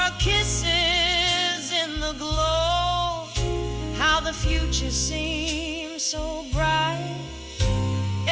kisses in the glow, how the future seems so bright.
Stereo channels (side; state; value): both; identical; correlation 1.00